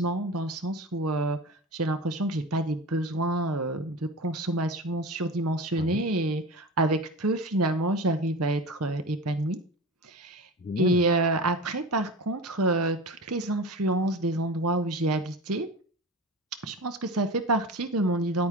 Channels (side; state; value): both; normal; correlation 0.30